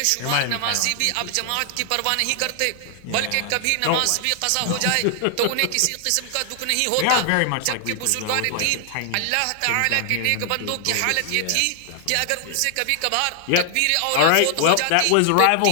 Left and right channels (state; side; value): different; both; correlation 0.00